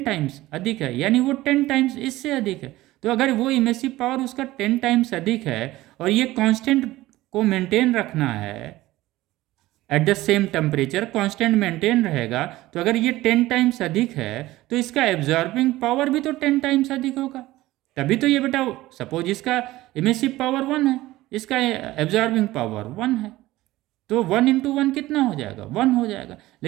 टाइम्स अधिक है, यानी वो 10 टाइम्स इससे अधिक है। तो अगर वो इमेसिव पावर उसका 10 टाइम्स अधिक है और ये कांस्टेंट को मेंटेन रखना है eight the same temperature, constant maintain रहेगा, तो अगर ये 10 टाइम्स अधिक है तो इसका एब्जॉर्बिंग पावर भी तो 10 टाइम्स अधिक होगा। तभी तो ये बेटा, सपोज इसका इमेसिव पावर 1 है, इसका एब्जॉर्बिंग पावर 1 है, तो 1 × 1 कितना हो जाएगा, 1 हो जाएगा।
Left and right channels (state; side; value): quieter; left; 17.2 dB